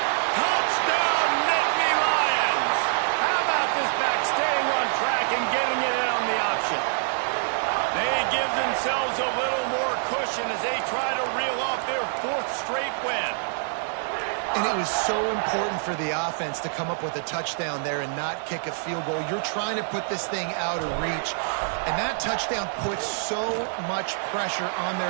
Touchdown, Nittany Lions. How about this back staying on track and getting it in on the option? themselves a little more cushion as they try to reel off their 4th straight win. And it was so important for the offense to come up with a touchdown there and not kick a field goal. You're trying to put this thing out of reach. And that touchdown puts so much pressure on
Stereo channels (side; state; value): left; silent; 59 dB below the other